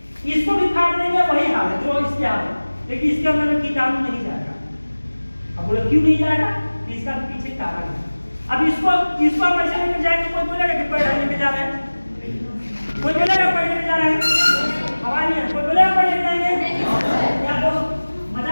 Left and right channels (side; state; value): both; inverted; correlation -1.00